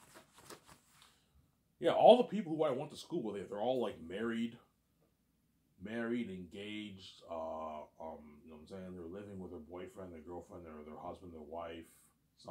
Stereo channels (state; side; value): identical; both; correlation 1.00